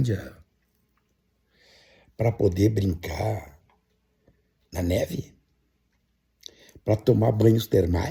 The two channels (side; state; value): both; identical; correlation 1.00